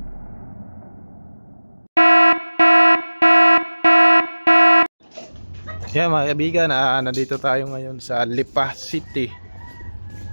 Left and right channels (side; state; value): both; inverted; correlation -1.00